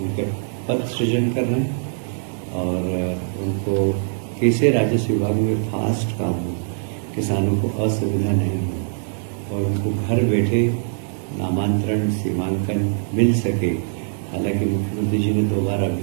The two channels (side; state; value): left; silent; digital silence